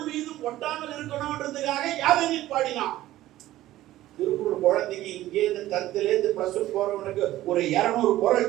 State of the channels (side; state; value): left; quieter; 15.0 dB